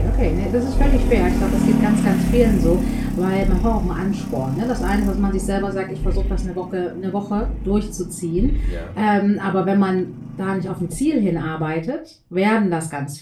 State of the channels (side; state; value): both; identical; correlation 1.00